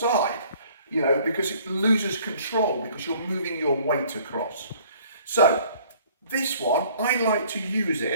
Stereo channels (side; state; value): both; inverted; correlation -0.55